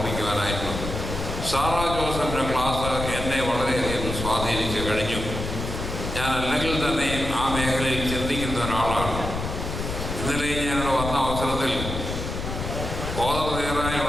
സാറാ ജോസഫിൻ്റെ ക്ലാസ് എന്നെ വളരെയധികം സ്വാധീനിച്ച് കഴിഞ്ഞു. ഞാൻ അല്ലെങ്കിൽ തന്നെയും ആ മേഖലയിൽ ചിന്തിക്കുന്ന ഒരാളാണ്. ഇന്നലെ ഞാനിവിടെ വന്ന അവസരത്തിൽ ഓതറേറായി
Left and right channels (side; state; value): left; noise; rumble, 5 dB below the sound